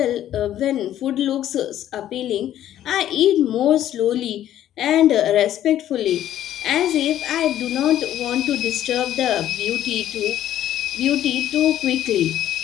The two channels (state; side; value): quieter; right; 11.9 dB